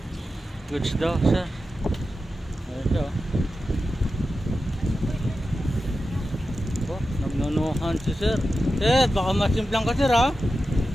Goods daw sir. Ito. Oh, nagnunuhan si sir. Sir, baka masimplang ka sir ha?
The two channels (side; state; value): both; normal; correlation 0.92